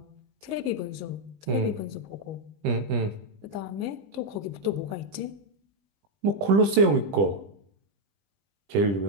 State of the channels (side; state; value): left; late; 20 ms